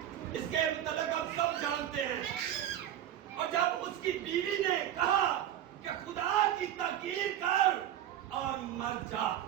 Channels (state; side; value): quieter; left; 11.4 dB